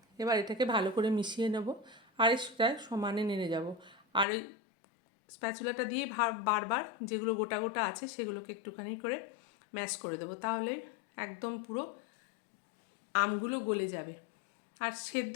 এবার এটাকে ভালো করে মিশিয়ে নেব, আর সেটা সমানে নেড়ে যাব। আর ওই স্প্যাচুলাটা দিয়ে বারবার যেগুলো গোটা গোটা আছে সেগুলোকে একটুখানি করে ম্যাশ করে দেবো, তাহলে একদম পুরো আমগুলো গলে যাবে আর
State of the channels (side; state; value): right; drops out; at 4.2 s